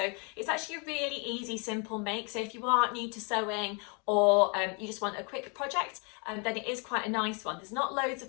it's actually a really easy, simple make. So if you are new to sewing, or you just want a quick project, then it is quite a nice one. There's not loads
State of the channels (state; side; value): quieter; right; 34.9 dB